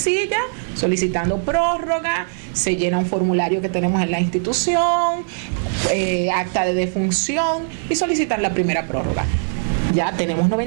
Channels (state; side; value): silent; left; digital silence